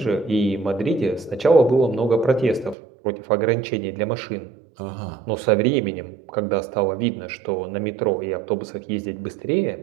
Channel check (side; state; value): left; drops out; at 2.8 s